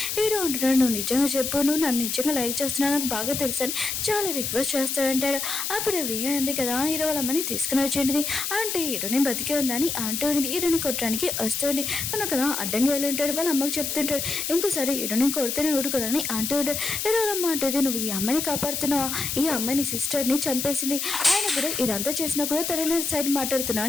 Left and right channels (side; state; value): left; noise; hiss, 2 dB below the sound